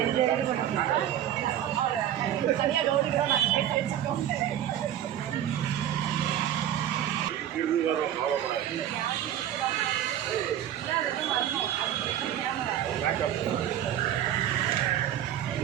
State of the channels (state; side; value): quieter; left; 11.1 dB